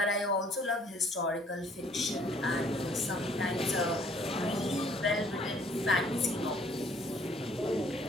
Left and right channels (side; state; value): both; normal; correlation 0.60